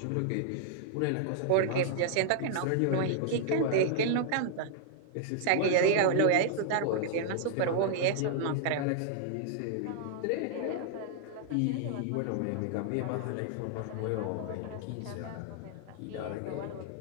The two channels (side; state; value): both; different; correlation -0.01